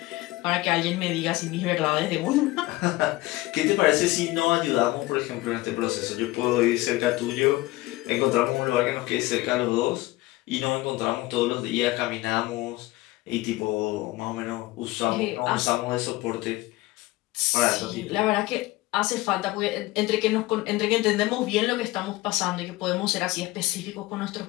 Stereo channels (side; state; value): right; quieter; 19.2 dB